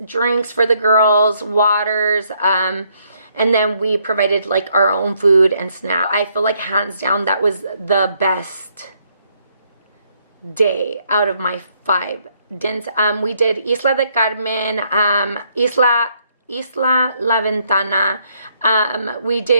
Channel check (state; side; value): inverted; both; correlation -0.71